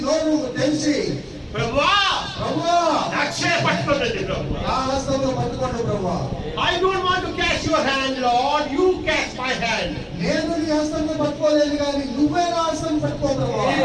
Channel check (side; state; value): both; identical; correlation 1.00